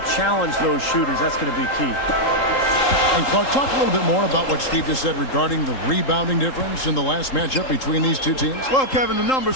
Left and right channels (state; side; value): late; right; 3.8 ms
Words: challenge those shooters. That's going to be key. And Clark, talk a little bit more about what Steve just said regarding the rebounding difference in the last matchup between these two teams. Well, Kevin, the